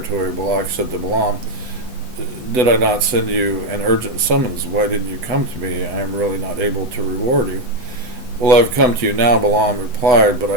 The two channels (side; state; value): left; late; 8.0 ms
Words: Balak said to Balaam, Did I not send you an urgent summons? Why didn't you come to me? I am really not able to reward you. Well, I've come to you now, Balaam replied, but